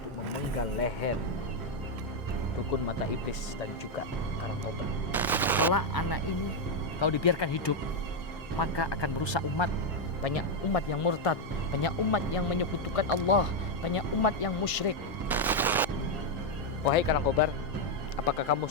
memenggal leher dukun mata iblis dan juga Karangkobar. Kalau anak ini kalau dibiarkan hidup, maka akan merusak umat. Banyak umat yang murtad, banyak umat yang menyekutukan Allah, banyak umat yang musyrik. Wahai Karangkobar, apakah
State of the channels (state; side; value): normal; both; correlation 0.02